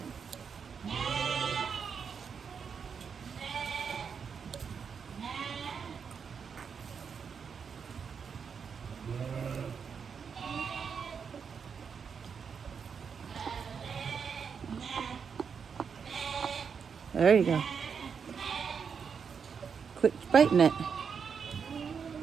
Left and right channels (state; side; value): quieter; left; 6.4 dB